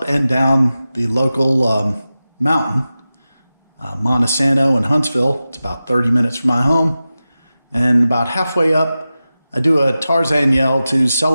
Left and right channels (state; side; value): inverted; both; correlation -0.94